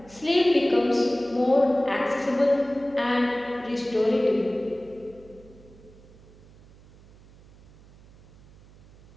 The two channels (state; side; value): noise; right; hum, 24 dB below the sound